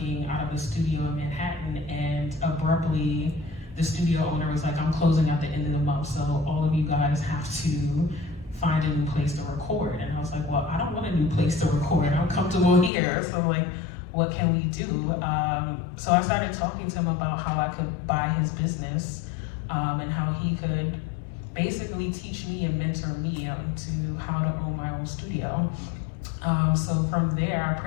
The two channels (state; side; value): drops out; right; at 12.9 s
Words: out of a studio in Manhattan, and abruptly the studio owner was like, I'm closing at the end of the month, so all of you guys have to find a new place to record. And I was like, well, I don't want a new place to record. I'm comfortable here. So like, what can we do? So I started talking to him about how I could buy his business and how he could basically teach me and mentor me to how to own my own studio. So from there, I